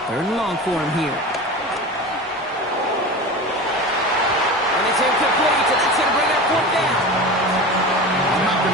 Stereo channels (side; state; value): both; normal; correlation 0.30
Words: 3rd and long for him here. And it's incomplete, and that's going to bring up 4th down. I'm not